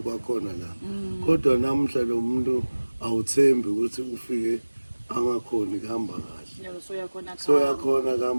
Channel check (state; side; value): inverted; both; correlation -1.00